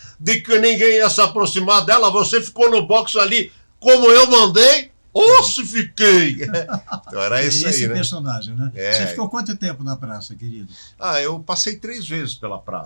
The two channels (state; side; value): inverted; both; correlation -1.00